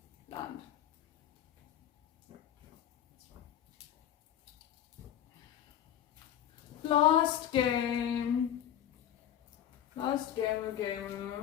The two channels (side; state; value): right; quieter; 10.7 dB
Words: land. Last game. Last